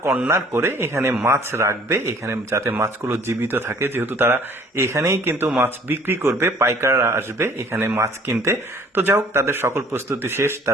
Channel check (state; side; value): normal; both; correlation 0.55